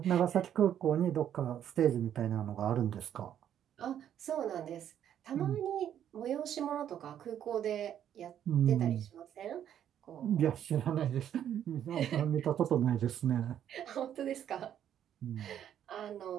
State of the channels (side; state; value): left; quieter; 10.0 dB